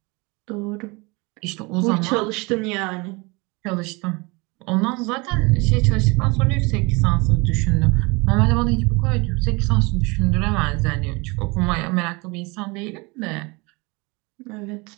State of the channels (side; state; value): left; quieter; 26.9 dB